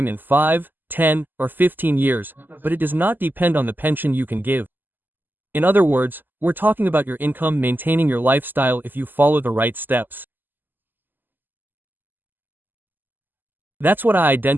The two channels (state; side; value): late; left; 0.090 ms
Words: in 5, 10, or 15 years, but it does not depend on the pension you can give. In other words, we're talking about your income maintaining your lifestyle if you follow the right steps. That's what I